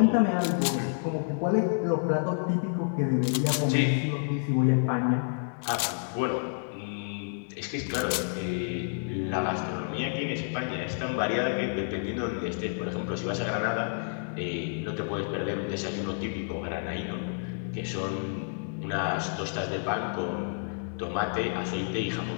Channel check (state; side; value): silent; right; digital silence